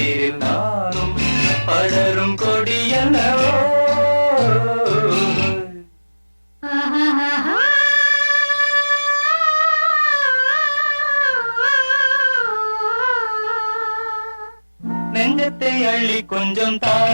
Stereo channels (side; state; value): both; inverted; correlation -1.00